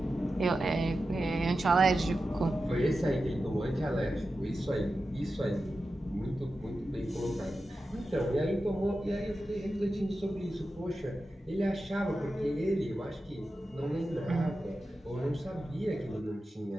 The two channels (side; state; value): both; normal; correlation 0.92